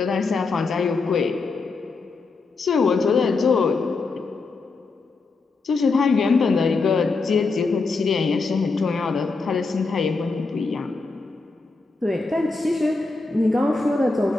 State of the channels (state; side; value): quieter; right; 4.0 dB